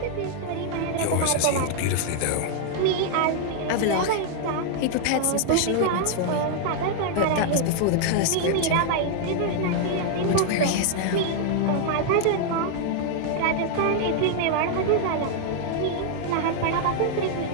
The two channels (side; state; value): both; different; correlation 0.00